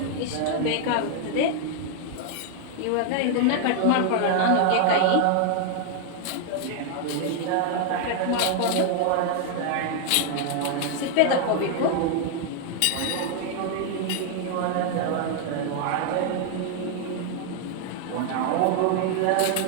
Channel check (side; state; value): both; different; correlation 0.00